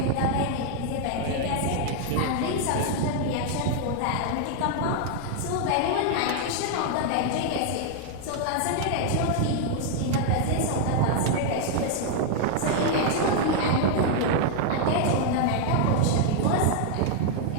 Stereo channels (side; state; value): both; different; correlation 0.00